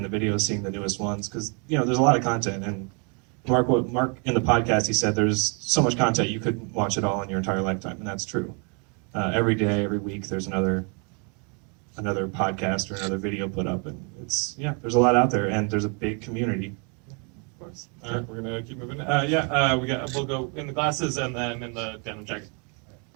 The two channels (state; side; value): quieter; left; 36.1 dB